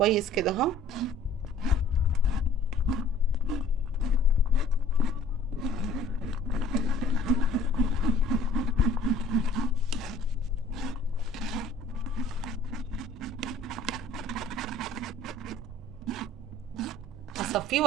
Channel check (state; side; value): normal; both; correlation 0.52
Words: كده اهو. هصفيه